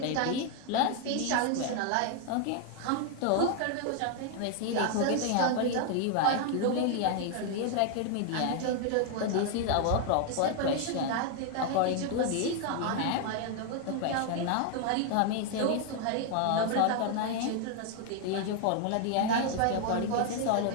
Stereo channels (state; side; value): different; both; correlation 0.00